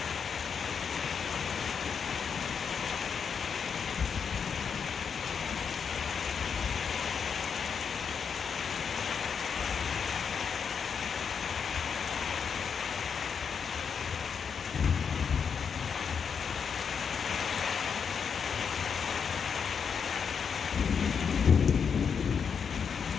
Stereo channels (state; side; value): quieter; right; 6.6 dB